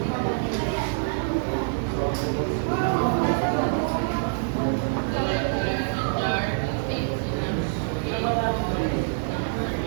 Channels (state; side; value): silent; left; 61 dB below the other